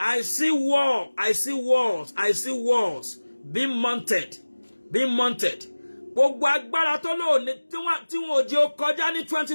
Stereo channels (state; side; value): inverted; both; correlation -1.00